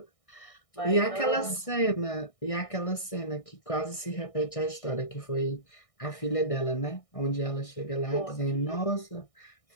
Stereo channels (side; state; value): right; late; 1.6 ms